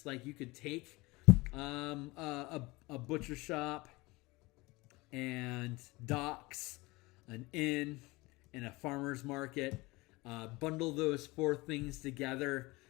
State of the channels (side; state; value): right; quieter; 22.7 dB